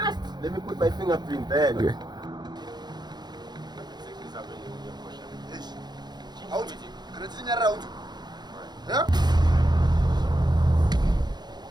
Let me put my fingerprint there. Okay. Out. Kana tsinyarira out. Yeah?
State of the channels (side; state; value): left; late; 0.20 ms